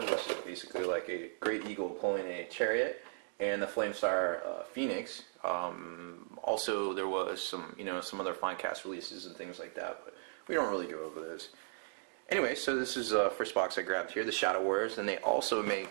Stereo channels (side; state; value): left; silent; digital silence